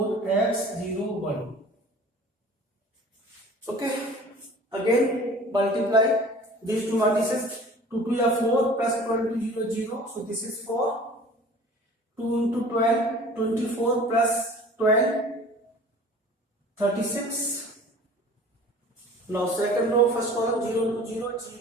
0 1. Okay. Again multiply these two matrices. 2 2 are 4 plus 12 to 0 0. So this is 4. 2 into 12, 24 plus 12, 36. Now second row, first column, 0 into 0,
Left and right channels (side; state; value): both; normal; correlation 0.45